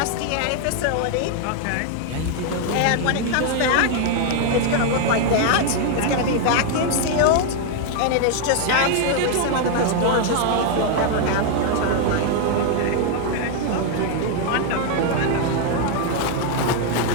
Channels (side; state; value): both; different; correlation 0.00